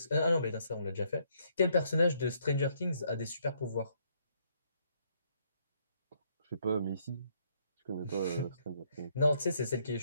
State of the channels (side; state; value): both; inverted; correlation -0.70